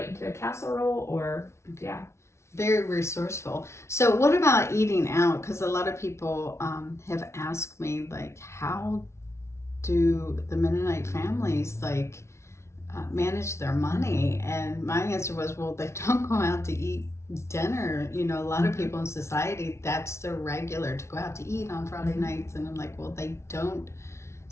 into a casserole or, yeah. Very resourceful. So what about eating out? Because a lot of people have asked me, like, how do the Mennonite families, like, manage their money? And my answer was, well, they don't go out to eat dinner. You know, a lot of people in society, that's their regular, to go out to eat on Friday nights. And I'm like, well, they don't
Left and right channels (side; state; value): right; late; 0.13 ms